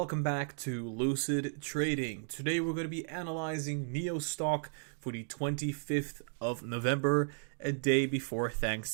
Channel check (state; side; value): silent; left; 55 dB below the other